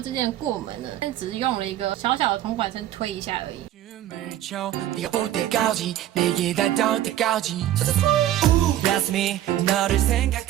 之間的过门呢，只是用了一个小小的铜管声推一下而已。 춤을 춰 네가 올 때까지 내게 닿을 때까지. That's me 너를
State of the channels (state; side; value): quieter; left; 12.7 dB